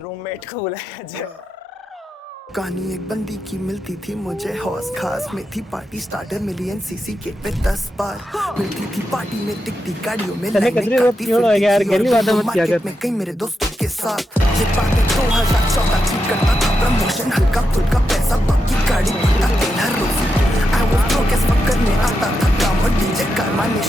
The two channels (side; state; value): both; normal; correlation 0.86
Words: रूममेट को बुलाया जाए. कहानी एक बंदी की मिलती थी मुझे हौस खास में थी party starter million CC gate पे 10 बार मिलती थी पार्टी में टिकटी गाड़ियों में लाइनें काटती मार्केट में कई मेरे दोस्तों के साथ ये बातें 2014 की करता था प्रमोशन हल्का फुल्का पैसा बाकी गाड़ी भरता तेल हर रोज I was broke as fuck करने आता था काम और डीजे कारवा ने